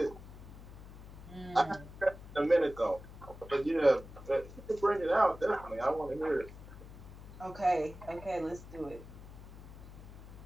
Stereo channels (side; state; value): left; noise; hum, 15 dB below the sound